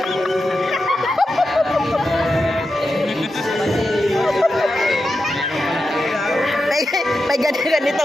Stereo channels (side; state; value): both; normal; correlation 0.89